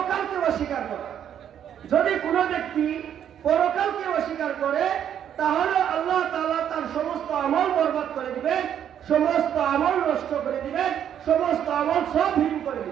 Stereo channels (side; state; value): left; quieter; 9.5 dB